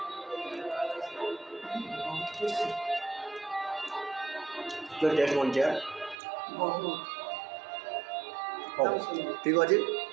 तो टेस्ट मन चाहिए ठीक अच्छे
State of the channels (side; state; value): left; drops out; at 6.2 s